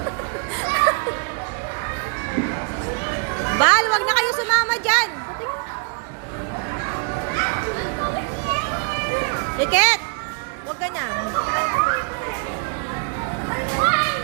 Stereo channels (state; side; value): quieter; left; 38.6 dB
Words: Bal, wag na kayong sumama dyan. Iket, wag ka na.